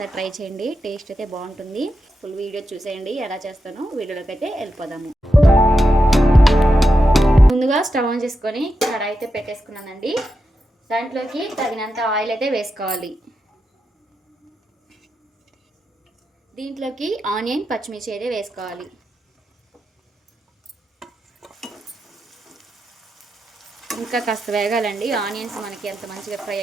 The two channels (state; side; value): normal; both; correlation 0.88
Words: ట్రై చేయండి. టేస్ట్ అయితే బాగుంటుంది. ఫుల్ వీడియో చూసేయండి ఎలా చేస్తానో. వీడియోలోకి అయితే వెళ్ళిపోదాము. ముందుగా స్టవ్ ఆన్ చేసుకొని కడాయి అయితే పెట్టేసుకున్నానండి. దాంట్లోకి తగినంత ఆయిల్ అయితే వేసుకోవాలి. దీంట్లోకి ఆనియన్, పచ్చిమిర్చి అయితే వేసుకోవాలి. ఇంకా కాస్త వేగాలండి. ఆనియన్స్ మనకి ఎంత మంచిగా ఫ్రై